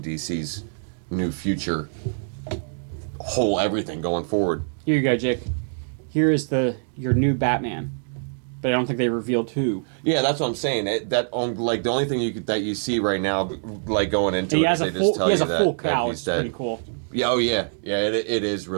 DC's new future, whole everything going forward. Here you go, Jake. Here is your new Batman, but I don't think they revealed who. Yeah, that's what I'm saying. Like the only thing that you see right now, like going into And he it, has is a they full just tell he has you a that- full that cowl. he's It's dead. pretty cool. Yeah, oh yeah, it is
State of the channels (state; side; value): silent; left; digital silence